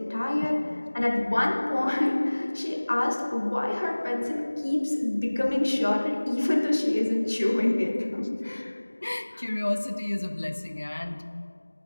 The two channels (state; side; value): inverted; both; correlation -1.00